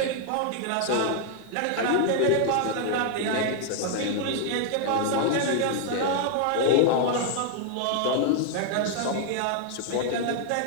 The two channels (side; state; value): both; different; correlation 0.00